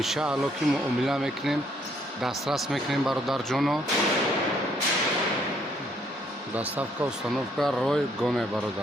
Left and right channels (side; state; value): both; normal; correlation 0.68